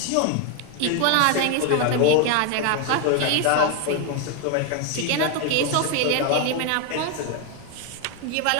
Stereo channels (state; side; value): different; both; correlation 0.01